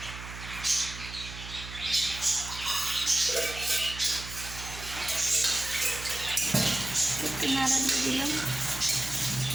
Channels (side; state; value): right; noise; hum, 11 dB below the sound